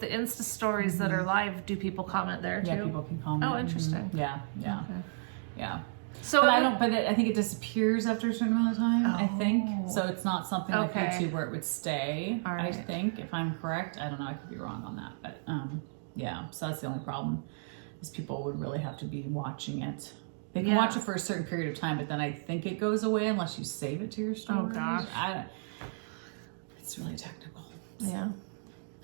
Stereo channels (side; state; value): left; silent; digital silence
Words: the Insta stories that are live, do people comment there too? Yeah, people can comment. Oh, interesting. Yeah, yeah, Okay. yeah. So But I don't. But I think it disappears after a certain amount of time. I think Oh. so. It's not something like Okay. YouTube where it would stay. All I right. think, if I'm correct, I don't know. I could be wrong on that, but yeah. So that's the only problem. Is people would really have to be watching it. They can watch it for a certain period of time, but then I think it goes away unless you save it to your storage. Oh, gosh. It's really technical. Yeah.